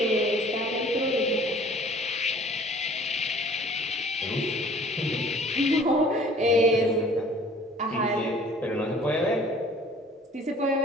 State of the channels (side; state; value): both; normal; correlation 0.51